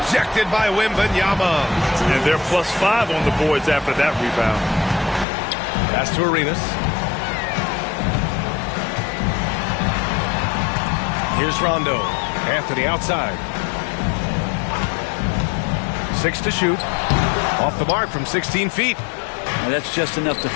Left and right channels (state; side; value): drops out; right; at 5.2 s